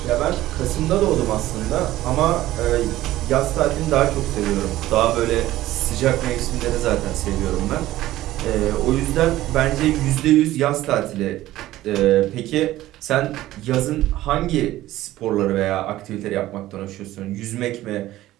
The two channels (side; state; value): left; quieter; 15.4 dB